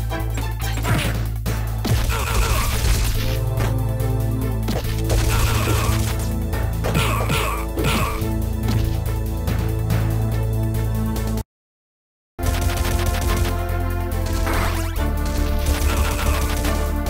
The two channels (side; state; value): both; identical; correlation 1.00